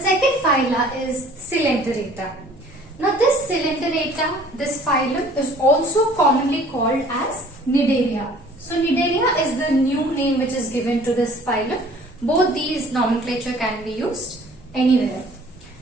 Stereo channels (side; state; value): both; normal; correlation 0.52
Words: phyla is Coelenterata. Now this Coelenterata, this phylum is also commonly called as Cnidaria. So Cnidaria is the new name which is given to this phylum. Both these nomenclature can be used anywhere.